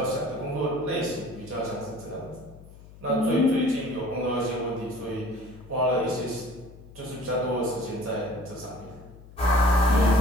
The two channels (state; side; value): noise; left; hum, 20 dB below the sound